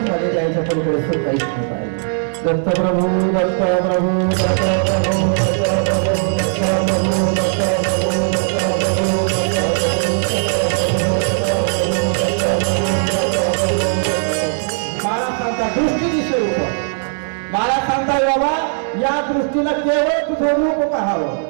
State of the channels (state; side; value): silent; left; 68 dB below the other